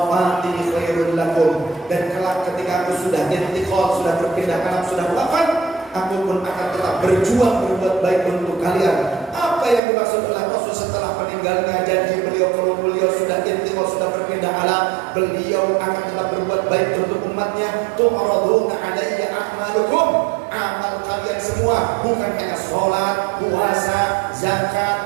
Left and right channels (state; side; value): drops out; left; at 9.8 s